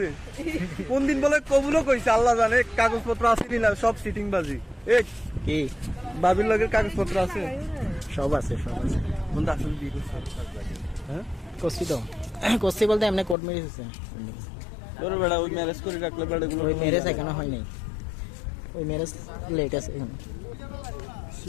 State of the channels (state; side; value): drops out; right; at 13.4 s